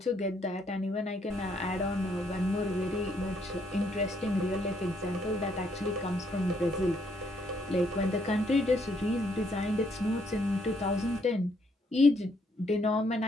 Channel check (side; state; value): both; normal; correlation 0.71